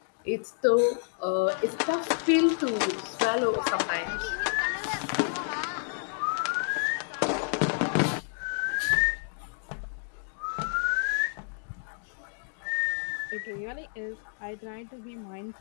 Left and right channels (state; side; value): silent; right; digital silence